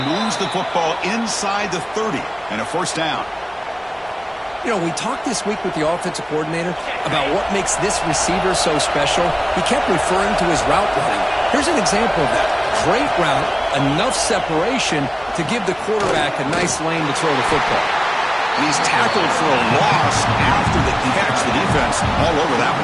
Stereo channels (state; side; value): identical; both; correlation 1.00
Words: Moves the football inside the 30 and a 1st down. You know, we talked this week with the offensive coordinator about what makes this receiver so special. He kept referring to his route running. Here's an example of that. Great route, enough separation to give the quarterback a nice lane to throw the football. And he's tackled for a loss after the catch. The defense all over that